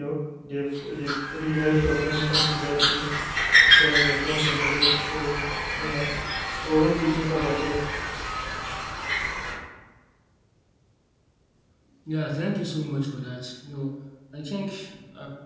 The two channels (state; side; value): identical; both; correlation 1.00